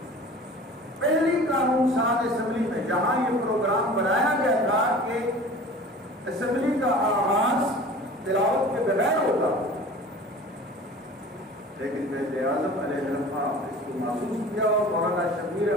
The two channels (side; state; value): both; normal; correlation 0.41